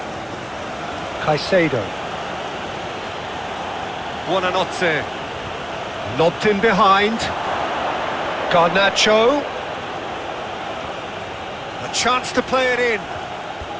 Caicedo. Buonanotte. Lobbed in behind. Garnacho. A chance to play it in.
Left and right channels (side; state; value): both; identical; correlation 1.00